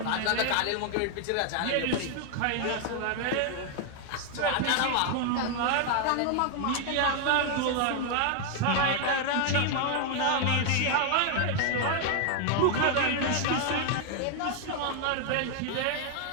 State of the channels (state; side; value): different; both; correlation 0.00